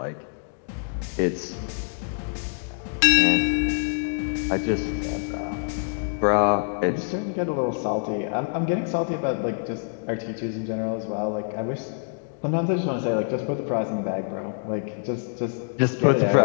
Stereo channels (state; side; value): silent; right; digital silence